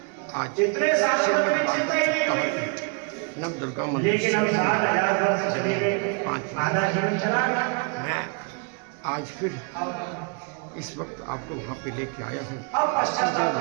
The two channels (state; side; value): quieter; left; 35.8 dB